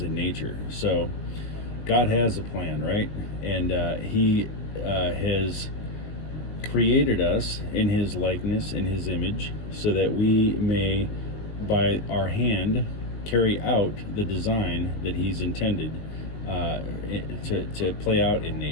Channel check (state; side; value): late; right; 19 ms